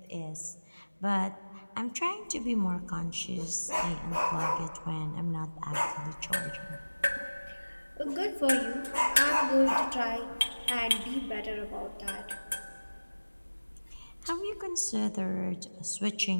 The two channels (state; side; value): inverted; both; correlation -1.00